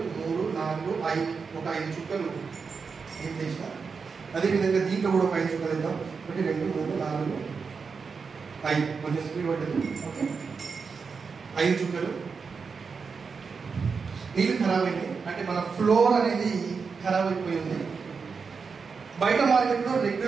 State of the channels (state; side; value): quieter; left; 5.3 dB